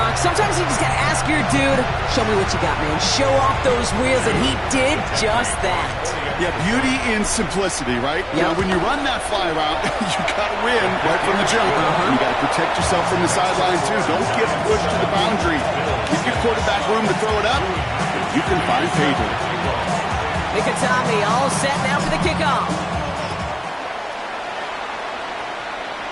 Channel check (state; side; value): identical; both; correlation 1.00